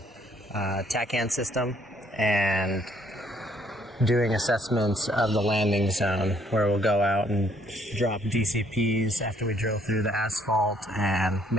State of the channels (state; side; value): normal; both; correlation 0.66